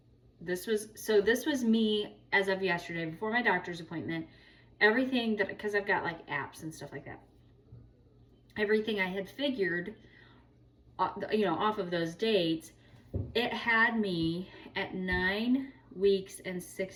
this was me as of yesterday, before my doctor's appointment, everything that, because I've got like apps and stuff like that, everything I had figured, you know, off of those dates, it had me at 9 weeks and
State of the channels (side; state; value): both; identical; correlation 1.00